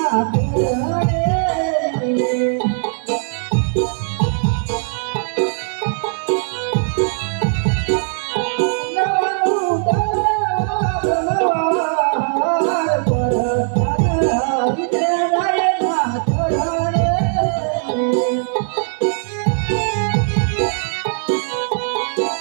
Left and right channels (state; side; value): silent; left; digital silence